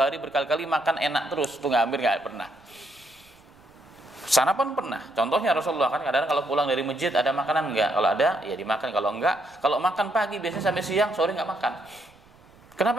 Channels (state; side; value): noise; right; rumble, 29 dB below the sound